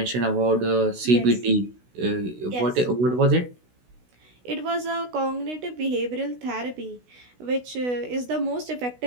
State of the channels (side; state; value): left; late; 16 ms